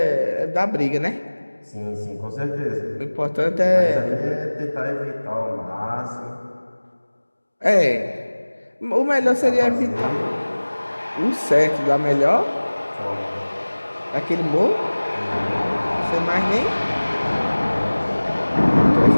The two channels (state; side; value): inverted; both; correlation -1.00